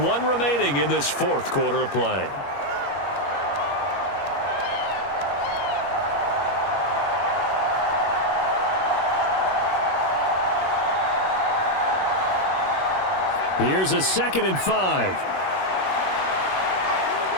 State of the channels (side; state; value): right; late; 21 ms